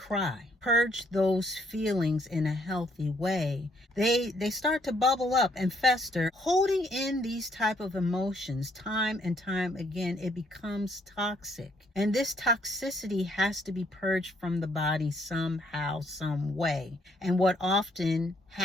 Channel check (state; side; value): normal; both; correlation 0.68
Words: purge those feelings in a healthy way, they start to bubble up and fester. Holding in these type of emotions time and time again, it becomes toxic. And this toxicity has to be purged from the body somehow, some way. And what often